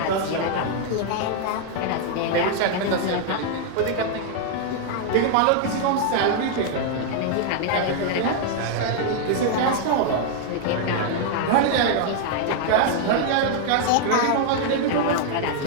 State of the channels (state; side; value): different; both; correlation 0.00